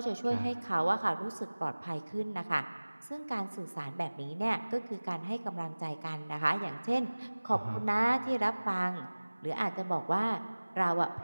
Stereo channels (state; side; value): inverted; both; correlation -1.00